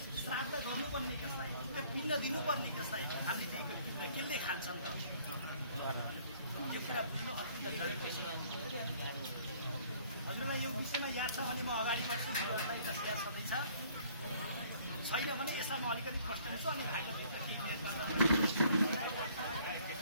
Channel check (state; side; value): inverted; both; correlation -0.58